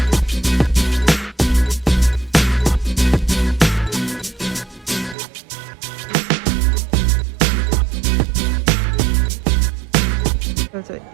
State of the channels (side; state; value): left; drops out; at 5.2 s